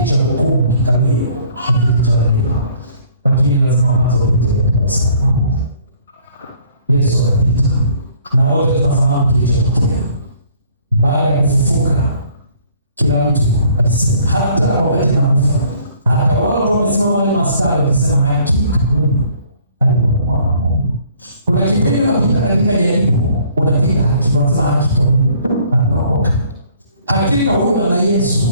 cha hukumu kikalie na kiti cha rehema, lakini lazima kwanza upite katika msalaba. Yesu akapita, na wote tunafahamu kilichotokea baada ya kufufuka. Kila mtu alisema, hata wakati nakufa, hata wale ambao wamesimama wale maskari wakisema, hakika huyu alikuwa mwana wa Mungu. Kuna kipindi unapita katika jaribu, unapiga haki, unasema hakika huyu anaokoka, hakika huyu ana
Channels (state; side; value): inverted; both; correlation -0.58